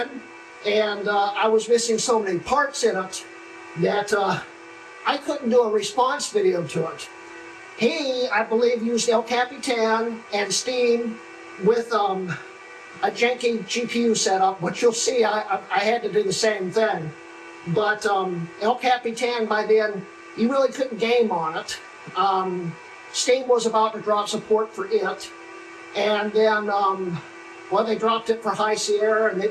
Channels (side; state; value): both; identical; correlation 1.00